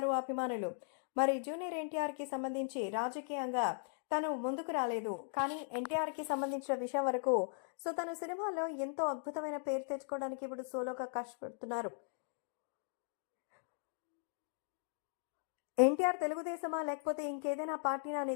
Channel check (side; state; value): right; silent; digital silence